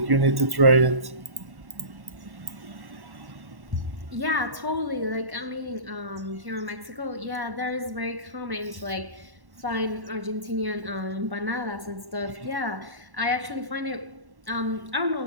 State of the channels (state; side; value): late; left; 1.1 ms